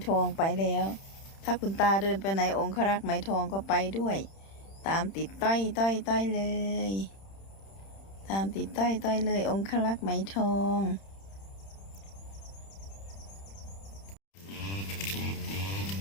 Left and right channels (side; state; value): right; late; 31 ms